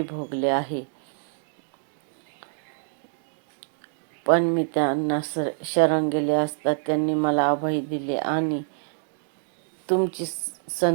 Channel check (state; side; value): silent; left; digital silence